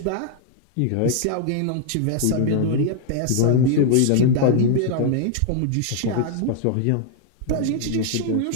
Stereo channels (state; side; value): different; both; correlation 0.00